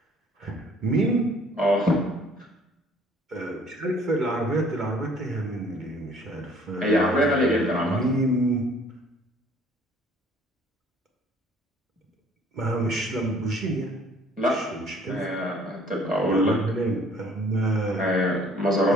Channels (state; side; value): normal; both; correlation 0.56